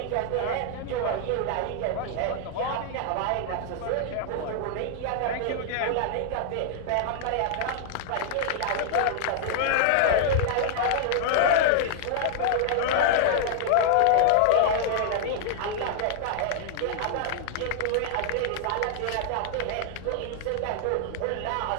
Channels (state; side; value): different; both; correlation -0.01